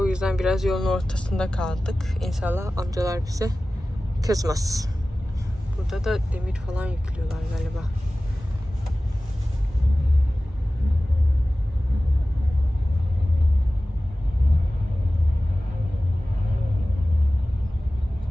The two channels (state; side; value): normal; both; correlation 0.96